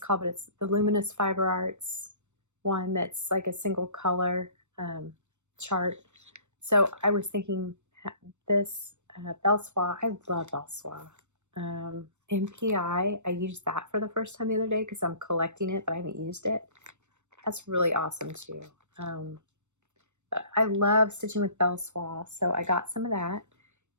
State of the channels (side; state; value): left; late; 0.84 ms